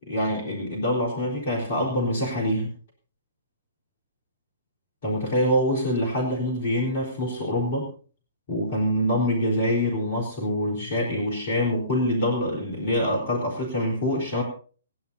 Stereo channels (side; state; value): both; inverted; correlation -0.42